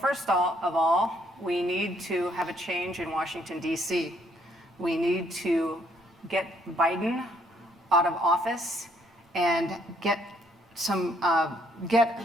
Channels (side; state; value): both; normal; correlation 0.68